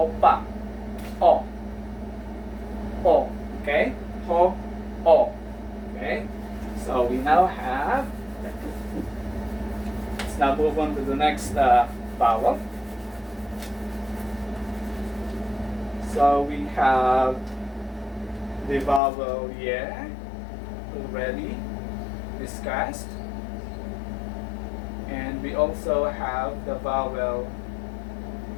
o, o. Okay, ho, o. Okay. So we now have. Let's now move on to the next vowel. So we have the vowel ye, already discussed, and we also have the vowel.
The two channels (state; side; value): drops out; right; at 19.0 s